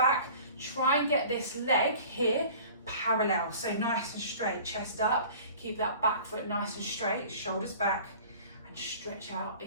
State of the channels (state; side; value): inverted; both; correlation -0.45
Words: Try and get this leg here parallel, so nice and straight, chest up, keep that back foot nice and straight, shoulders back, and stretch out